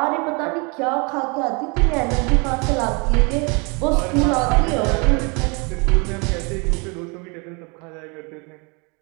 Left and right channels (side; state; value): left; quieter; 31.2 dB